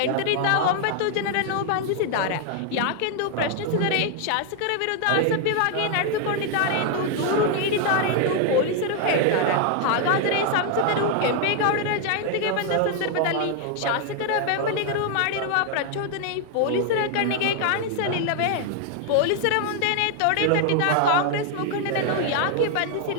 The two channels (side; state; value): both; different; correlation 0.00